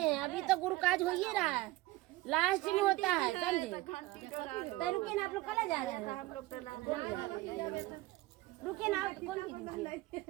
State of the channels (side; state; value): left; quieter; 19.0 dB